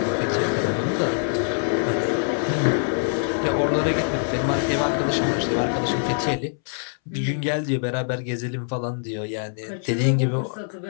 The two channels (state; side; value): silent; right; 63 dB below the other